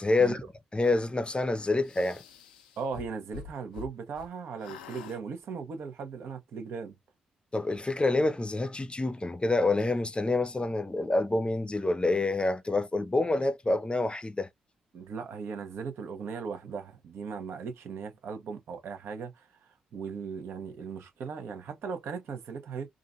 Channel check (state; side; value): normal; both; correlation 0.86